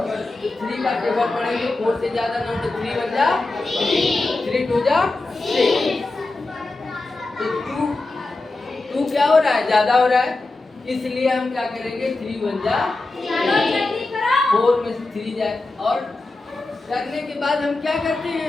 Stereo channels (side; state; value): right; quieter; 3.2 dB